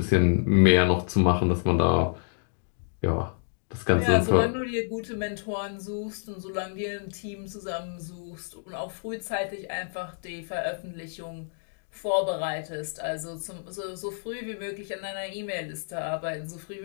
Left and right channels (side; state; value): right; silent; digital silence